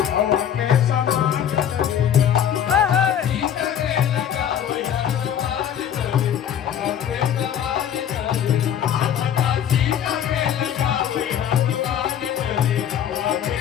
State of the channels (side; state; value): right; quieter; 9.5 dB